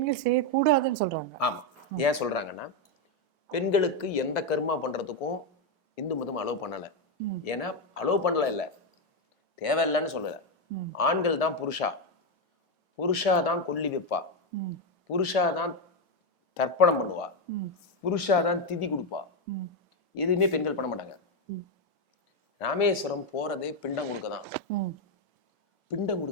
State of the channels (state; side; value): late; right; 1.7 ms